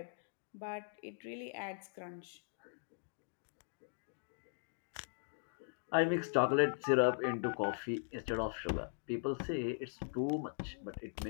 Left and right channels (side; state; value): right; silent; digital silence